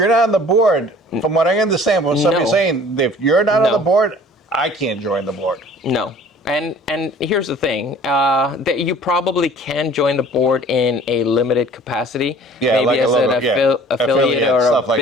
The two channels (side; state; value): both; normal; correlation 0.49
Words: not on the board, from what I understand, what somebody's No. saying, if you're not on No. the board, I can't join the board. No. And here's the thing, that you probably can join the board in a limited capacity, Yeah, maybe like as an affiliate affiliate, or stuff a like